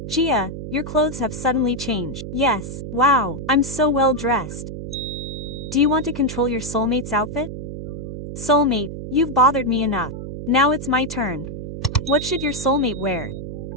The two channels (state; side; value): noise; right; hum, 8 dB below the sound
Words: Gia, your clothes have suddenly changed. Yes. Wow. I'm so well dressed. Do you want to control your soulmate's outfit? Soulmate, you've bothered me enough. Now it's my turn. What should your soulmate wear?